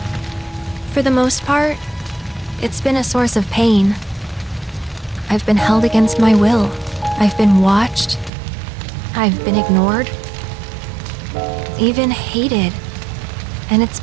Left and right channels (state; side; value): drops out; left; at 8.3 s